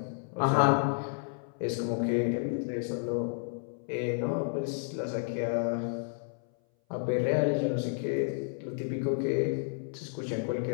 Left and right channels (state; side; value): silent; right; 57 dB below the other